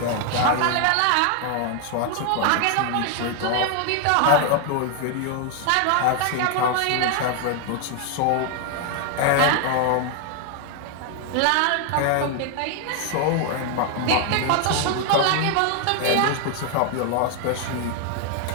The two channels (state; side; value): different; both; correlation 0.00